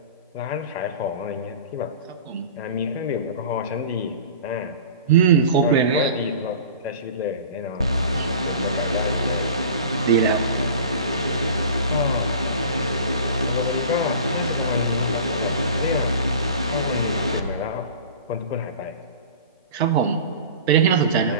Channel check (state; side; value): inverted; both; correlation -0.40